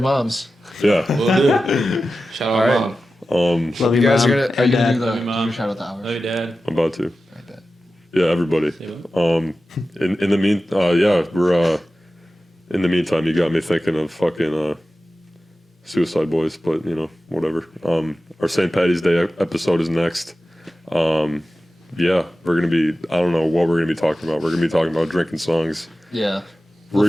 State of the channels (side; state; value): both; normal; correlation 0.94